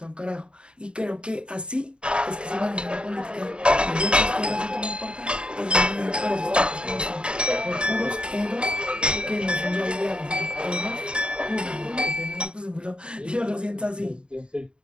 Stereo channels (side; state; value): left; late; 0.053 ms